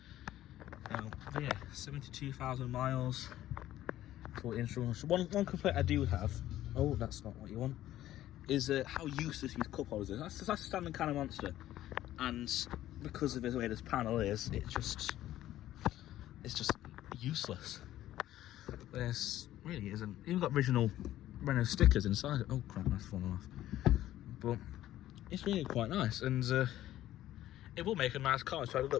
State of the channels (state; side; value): quieter; right; 13.6 dB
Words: Yeah, 72,000 miles. One complaint I do have, oh, that's not what you want, is how useless these cup holders are. That's a standard kind of monster, and because of the way this panel is, it's just useless. This really isn't. Even got original Renault stickers inside it. Oh crap, that's fallen off. But it's really quite nice, and it will make a nice car. So I